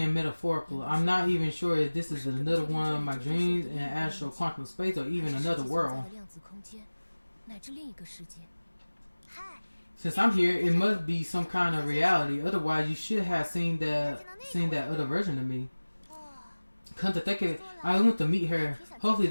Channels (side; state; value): both; inverted; correlation -1.00